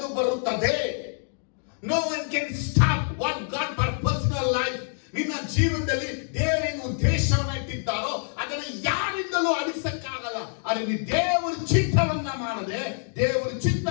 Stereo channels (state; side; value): silent; right; 61 dB below the other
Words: ಬರುತ್ತದೆ. No one can stop what God purpose in your life. ನಿನ್ನ ಜೀವನದಲ್ಲಿ ದೇವರಿಗೆ ಉದ್ದೇಶವನ್ನ ಇಟ್ಟಿದ್ದಾರೋ ಅದನ್ನ ಯಾರಿಂದಲೂ ಅಳಿಸಕ್ಕಾಗಲ್ಲ. ಆದರೆ ನೀ ದೇವರ ಚಿತ್ತವನ್ನ ಮಾಡದೆ, ದೇವರ